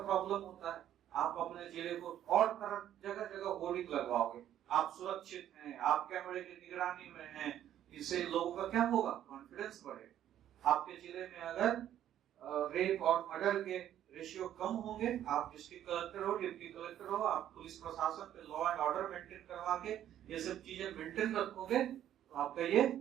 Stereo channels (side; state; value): left; quieter; 11.2 dB